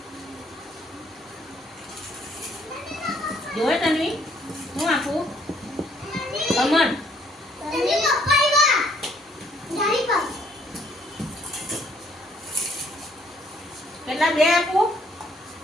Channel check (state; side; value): normal; both; correlation 0.65